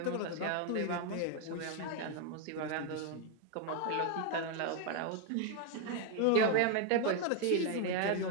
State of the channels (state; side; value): different; both; correlation 0.01